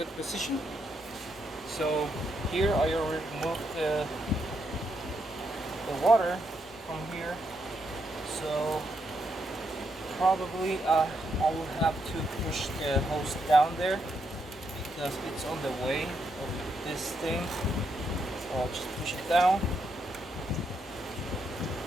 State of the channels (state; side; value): normal; both; correlation 0.79